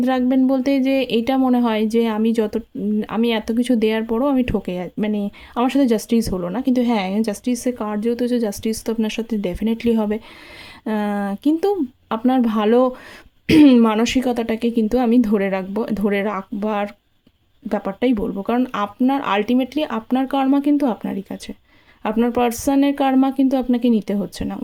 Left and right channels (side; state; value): both; identical; correlation 1.00